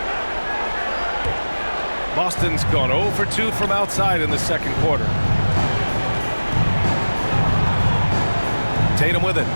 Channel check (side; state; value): both; inverted; correlation -1.00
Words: Boston's gone 0 for 2 from outside in the second quarter. Tatum with it.